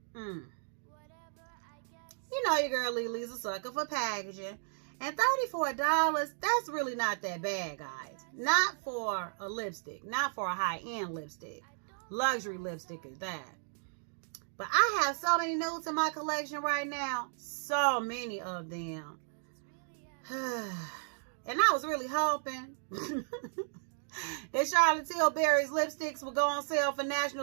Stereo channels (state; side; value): silent; left; digital silence